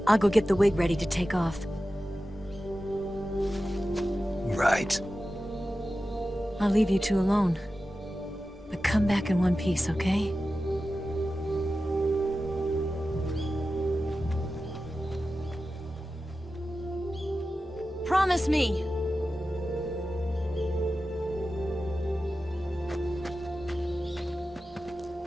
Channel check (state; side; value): normal; both; correlation 0.93